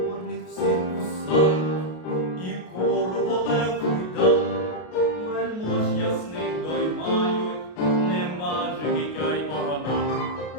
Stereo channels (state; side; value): late; right; 33 ms